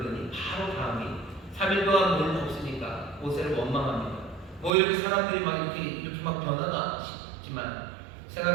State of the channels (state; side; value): drops out; left; at 4.7 s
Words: 바로 다음이 3일 동안 물 없으니까 모세를 원망합니다. 뭐 이렇게 사람들이 막 이렇게 막 변하나 싶지만